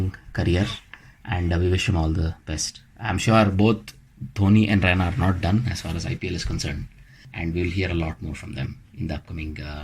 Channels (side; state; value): both; identical; correlation 1.00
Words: career, and we wish him all the best. I'm sure both Dhoni and Raina are not done as far as IPL is concerned, and we'll hear a lot more from them in the upcoming